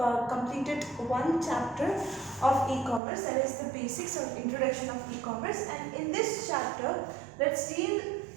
completed one chapter of e-commerce, that is the basics or introduction of e-commerce, and in this chapter let's deal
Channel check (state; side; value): drops out; left; at 3.0 s